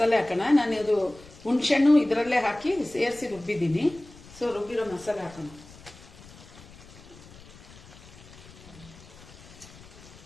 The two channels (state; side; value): noise; left; rumble, 20 dB below the sound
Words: ಹಾಕೋಣ. ನಾನು ಇದು ಹುಣಸೆಹಣ್ಣು ಇದರಲ್ಲೇ ಹಾಕಿ ಸೇರಿಸಿ ರುಬ್ಬಿದ್ದೀನಿ. ಸೊ ರುಬ್ಬಿರೋ ಮಸಾಲೆ ಹಾಕೋಣ.